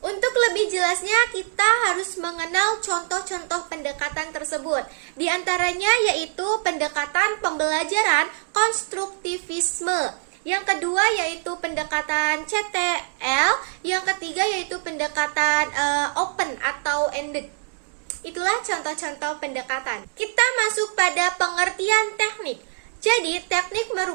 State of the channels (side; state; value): left; silent; 63 dB below the other